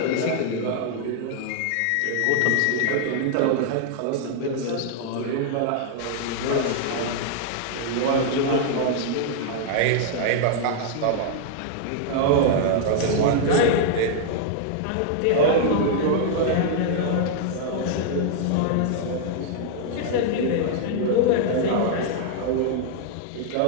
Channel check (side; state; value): both; different; correlation -0.01